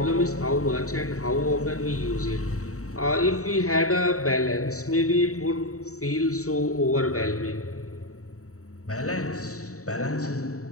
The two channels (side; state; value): right; late; 0.65 ms